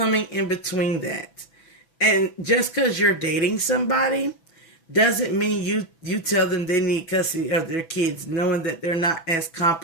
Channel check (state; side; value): late; right; 6.1 ms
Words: in between that. And just because you're dating somebody doesn't mean you tell them they need custody of their kids, knowing that they're not as